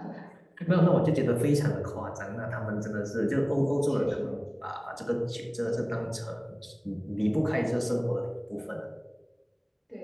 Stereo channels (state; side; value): identical; both; correlation 1.00